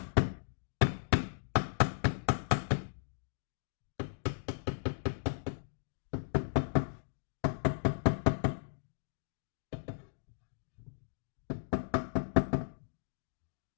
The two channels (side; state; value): right; silent; digital silence